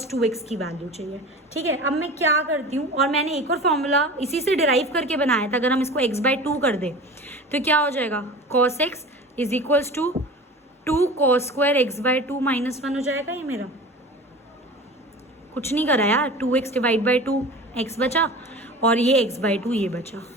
2x की वैल्यू चाहिए, ठीक है। अब मैं क्या करती हूँ, और मैंने एक और फॉर्मूला इसी से डिराइव करके बनाया था, अगर हम इसको x बाई 2 कर दें तो क्या हो जाएगा cos x is equals to 2 cos square x by 2 minus 1 हो जाएगा। ये मेरा कुछ नहीं करा यार, 2x डिवाइड बाई 2 x बचा, और ये x बाई 2 ये बचा,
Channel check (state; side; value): normal; both; correlation 0.36